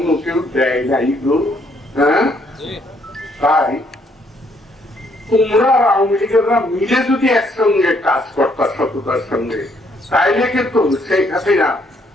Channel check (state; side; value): normal; both; correlation 0.69